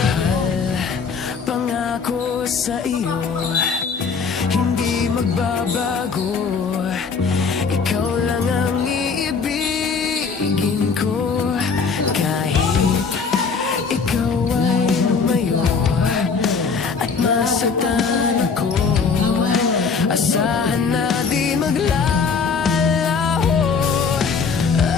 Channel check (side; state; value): right; quieter; 5.3 dB